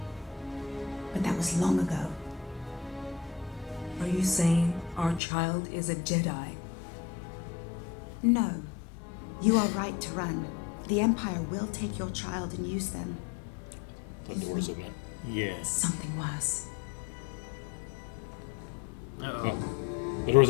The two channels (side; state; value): right; drops out; at 5.2 s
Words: But that was long ago. Are you saying our child is a Jedi? No. You are right to run. The Empire will take your child and use them. The doors open. Yeah. Something worse. Uh-oh. The